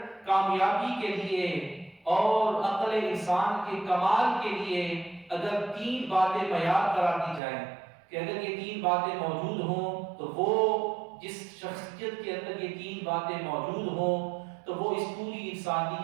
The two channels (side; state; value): left; drops out; at 7.4 s